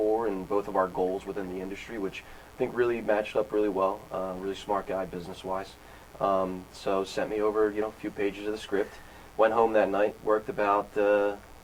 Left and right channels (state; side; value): identical; both; correlation 1.00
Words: and both of our goals within the industry, which I think really matched up really well. Really smart guy business-wise. So sent me over, a few pages of the script. Went home that night, worked about,